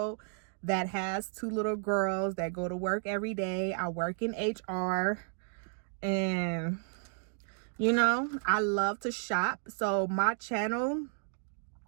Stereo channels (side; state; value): left; silent; digital silence